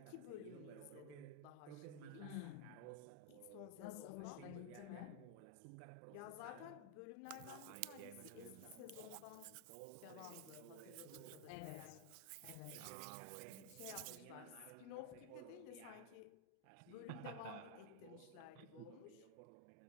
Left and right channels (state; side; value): different; both; correlation 0.00